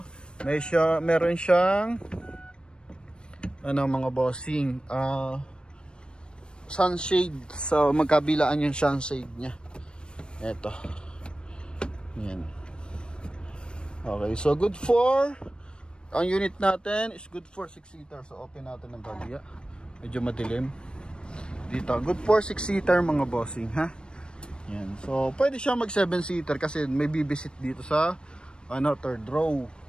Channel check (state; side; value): late; right; 0.053 ms